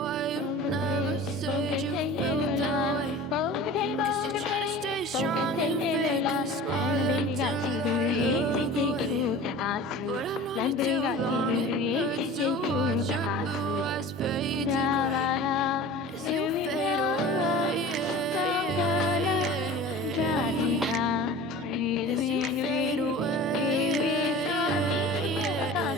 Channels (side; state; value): both; normal; correlation 0.39